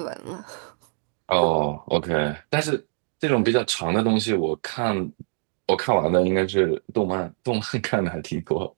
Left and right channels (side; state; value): left; silent; digital silence